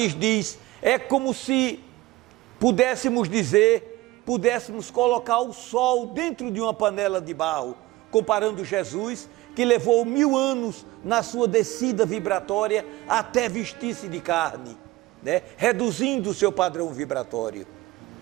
diz, é como se pudéssemos colocar o sol dentro de uma panela de barro, comparando Jesus, que levou 1000 anos na sua descida vibratória até vestir-se de carne, né? Reduzindo o seu padrão vibratório,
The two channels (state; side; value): quieter; left; 18.6 dB